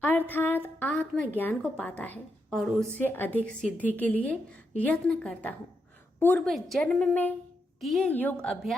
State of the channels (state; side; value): normal; both; correlation 0.83